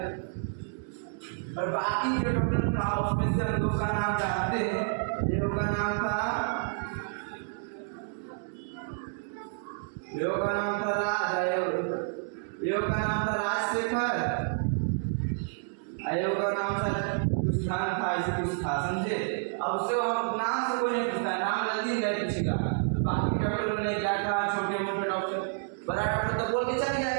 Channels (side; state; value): left; silent; digital silence